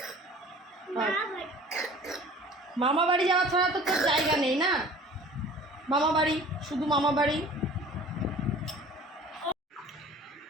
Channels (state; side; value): normal; both; correlation 0.46